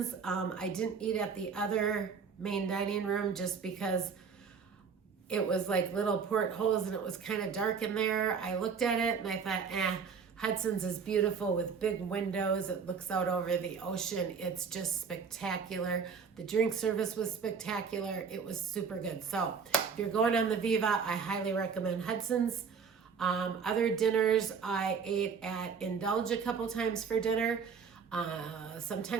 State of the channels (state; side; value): quieter; left; 6.0 dB